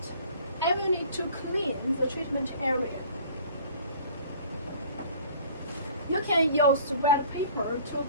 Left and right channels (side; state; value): both; inverted; correlation -0.49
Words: I will need to clean the treatment area. You can use wet paper